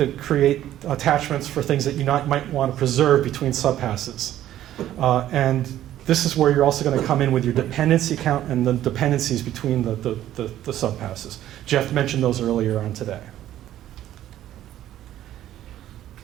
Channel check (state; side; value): quieter; left; 12.6 dB